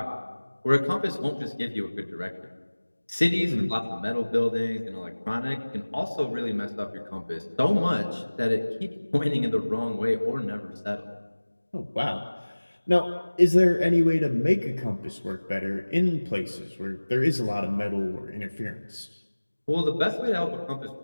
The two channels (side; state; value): both; inverted; correlation -1.00